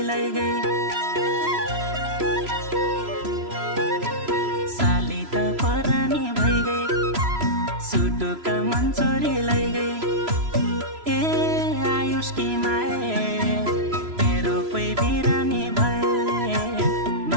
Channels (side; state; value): left; late; 3.0 ms